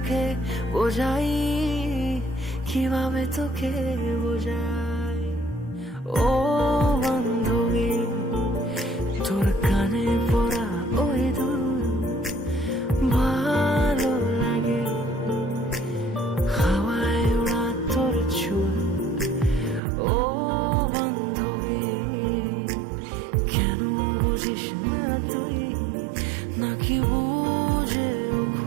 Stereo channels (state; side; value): drops out; left; at 19.8 s